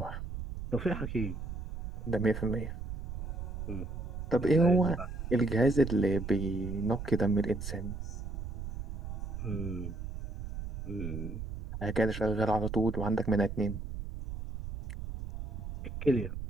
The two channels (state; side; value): noise; right; rumble, 7 dB below the sound